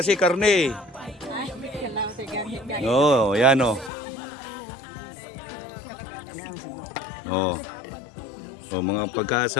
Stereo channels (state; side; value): drops out; right; at 3.9 s